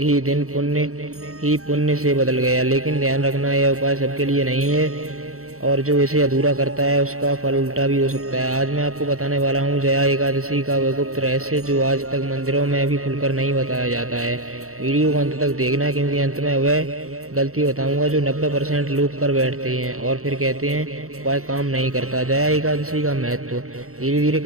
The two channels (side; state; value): left; late; 0.64 ms